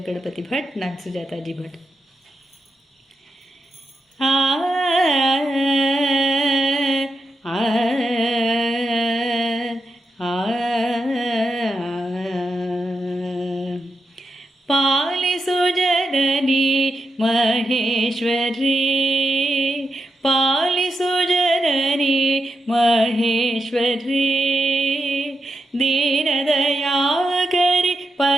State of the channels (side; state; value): both; normal; correlation 0.87